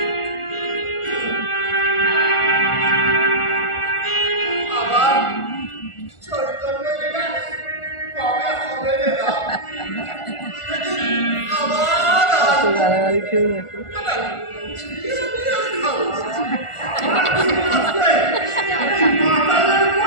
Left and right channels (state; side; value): late; right; 1.4 ms